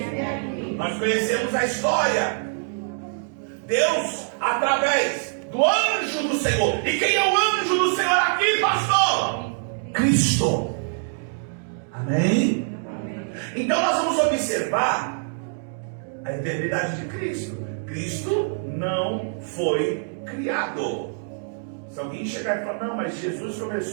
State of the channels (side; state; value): left; silent; digital silence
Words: aqui. Nós conhecemos a história. Deus, através do anjo do Senhor. E quem é o anjo do Senhor aqui, pastor? Cristo. Amém? Então nós vamos observar a eternidade de Cristo. Cristo não foi criado. Se alguém chegar e falar, não, mas Jesus